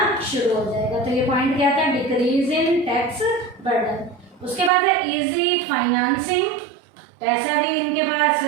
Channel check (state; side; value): drops out; left; at 4.7 s